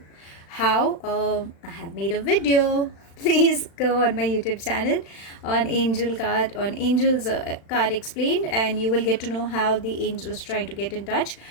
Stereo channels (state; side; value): late; right; 36 ms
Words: how, I have made a video. Please go on my YouTube channel on Angel's card explained, and you will get to know how the angels trying to get in touch.